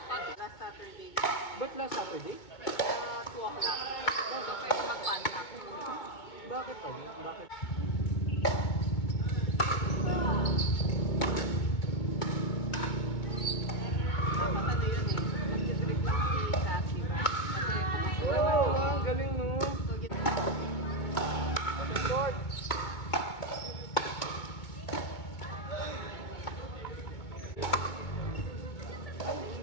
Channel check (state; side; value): late; right; 2.2 ms